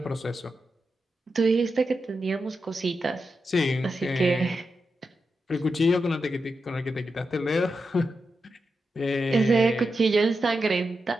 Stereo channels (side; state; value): both; normal; correlation 0.88